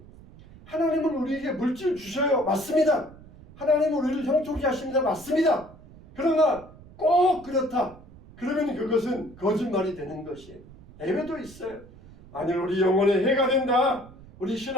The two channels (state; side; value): noise; right; rumble, 21 dB below the sound